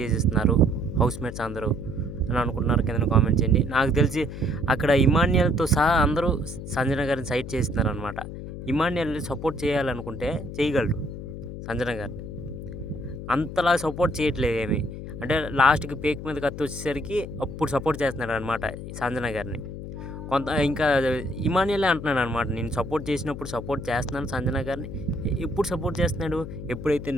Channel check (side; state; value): left; noise; hum, 9 dB below the sound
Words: హౌస్‌మేట్స్ అందరూ అని అనుకుంటున్నారు కిందన కామెంట్ చేయండి. నాకు తెలిసి అక్కడ ఇమాన్యుయల్‌తో సహా అందరూ సంజన గారిని సైడ్ చేస్తున్నారనమాట. ఇమాన్యుయల్‌ని సపోర్ట్ చేయాలనుకుంటే చేయగలరు సంజన గారిని. అంతలా సపోర్ట్ చేయట్లేదు ఏమి. అంటే లాస్ట్‌కి పేక్ మీద కత్తొచ్చేసరికి అప్పుడు సపోర్ట్ చేస్తున్నాడనమాట సంజన గారిని. ఇంకా ఇమాన్యుయలే అంటున్నాడనమాట. నేను సపోర్ట్ చేసినప్పుడు సపోర్ట్ చేస్తున్నాను సంజన గారిని. ఎప్పుడు సపోర్ట్ చేస్తున్నాడు? ఎప్పుడైతే